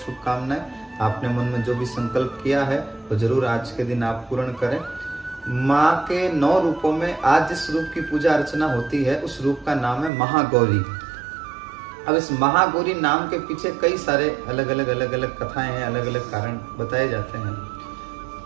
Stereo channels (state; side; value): drops out; left; at 10.1 s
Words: आपने मन में जो भी संकल्प किया है तो जरूर आज के दिन आप पूर्ण करें। माँ के 9 रूपों में आज जिस रूप की पूजा अर्चना होती है उस रूप का नाम है महागौरी। अब इस महागौरी नाम के पीछे कई सारे अलग अलग कथाएं हैं, अलग अलग कारण बताए जाते हैं।